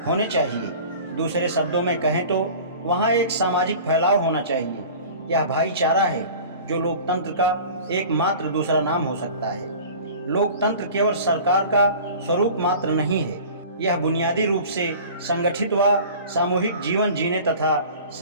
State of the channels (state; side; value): inverted; both; correlation -0.41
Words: होने चाहिए। दूसरे शब्दों में कहें तो वहाँ एक सामाजिक फैलाव होना चाहिए। यह भाईचारा है जो लोकतंत्र का एकमात्र दूसरा नाम हो सकता है। लोकतंत्र केवल सरकार का स्वरूप मात्र नहीं है, यह बुनियादी रूप से संगठित व सामूहिक जीवन जीने तथा